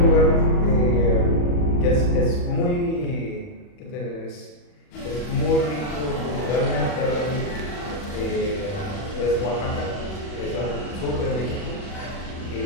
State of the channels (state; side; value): late; right; 40 ms